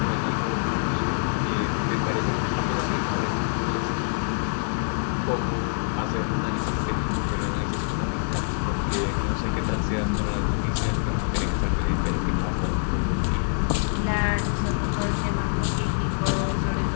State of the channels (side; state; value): right; silent; digital silence